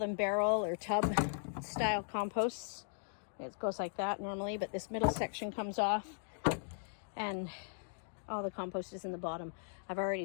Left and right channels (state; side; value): silent; right; digital silence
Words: barrel or tub style composts. It goes like that normally, but this middle section comes off and all the compost is in the bottom. I've already